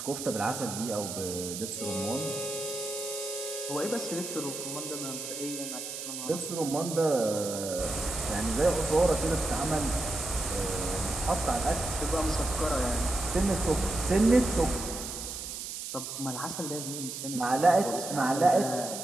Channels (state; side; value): noise; right; hiss, 7 dB below the sound